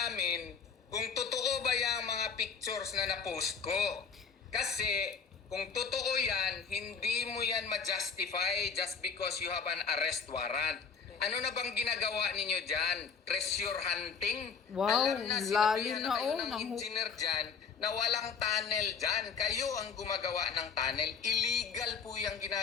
kung totoo ba yung mga pictures na na-post ko. Kasi kung totoo yan, hindi mo yan ma-justify just because you have an arrest warrant. Ano na bang ginagawa ninyo dyan? Treasure hunting? Wow, alam na, lalim na kayo ng ng engineer dyan na walang tunnel dyan. Kayo ang gumagawa ng tunnel. Illegal po yung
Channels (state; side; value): quieter; right; 5.9 dB